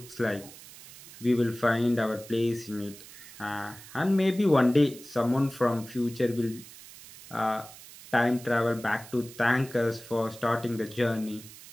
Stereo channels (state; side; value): noise; right; hiss, 18 dB below the sound